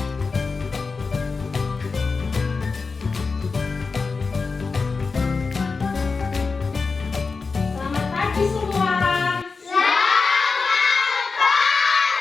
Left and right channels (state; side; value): quieter; right; 4.5 dB